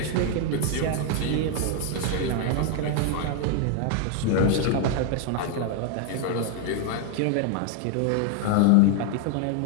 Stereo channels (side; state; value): both; different; correlation 0.01